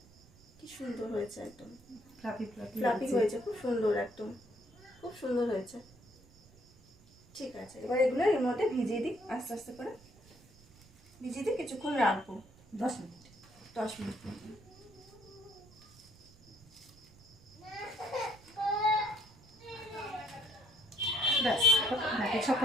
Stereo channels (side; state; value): right; noise; rumble, 25 dB below the sound